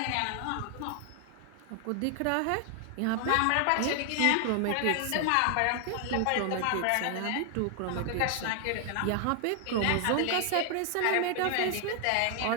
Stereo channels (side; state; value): both; different; correlation 0.00